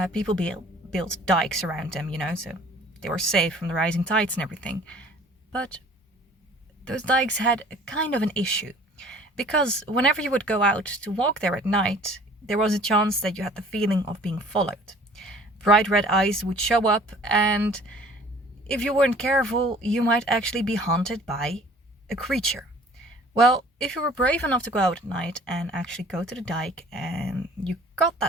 people built dikes around them, so they were safe from the rising tides and everything. But those dikes had a kind of an issue, because whenever you would go out to walk there at night, there was a chance that you had the feeling of being followed. Bright red eyes would show up, and if you weren't careful, you might actually be haunted by a creature. Well, if you were brave enough to go out at night and actually go to the dike and you got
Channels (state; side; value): normal; both; correlation 0.50